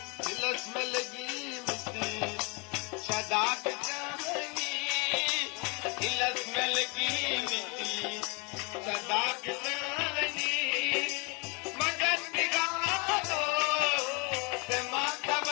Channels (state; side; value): quieter; right; 31.1 dB